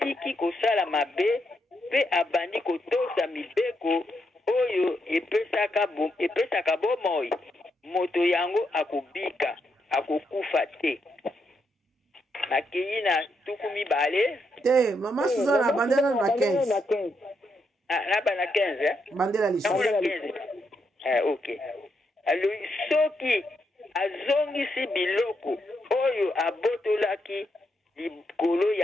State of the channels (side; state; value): both; normal; correlation 0.80